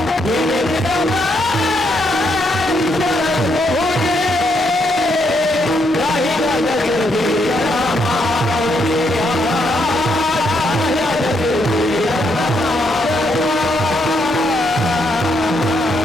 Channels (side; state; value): both; normal; correlation 0.76